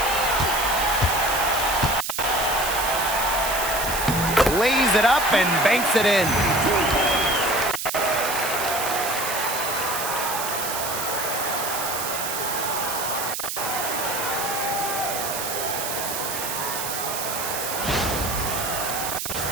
Lays it up and banks it in.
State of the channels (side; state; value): right; noise; hiss, 4 dB below the sound